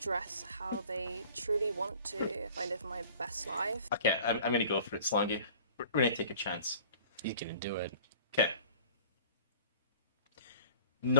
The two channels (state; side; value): inverted; both; correlation -0.47